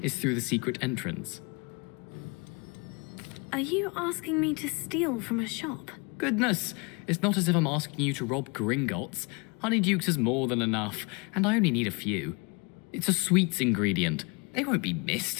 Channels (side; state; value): right; quieter; 30.1 dB